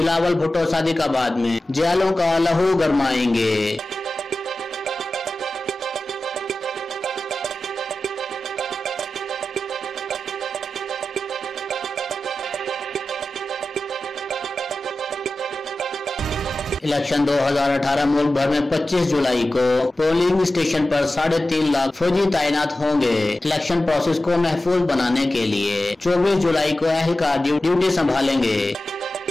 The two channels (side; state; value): both; normal; correlation 0.94